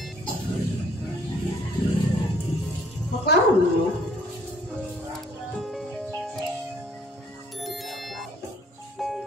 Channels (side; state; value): both; normal; correlation 0.61